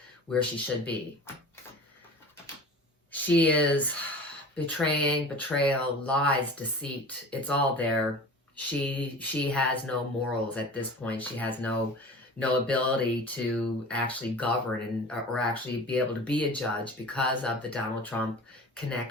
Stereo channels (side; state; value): both; normal; correlation 0.38